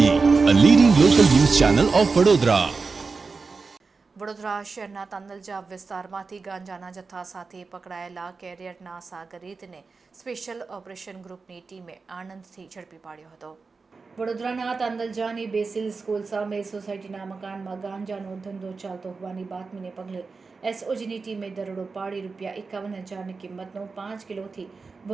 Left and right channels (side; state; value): left; quieter; 4.4 dB